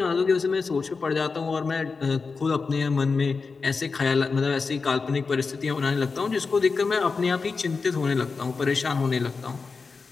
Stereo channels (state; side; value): quieter; right; 4.6 dB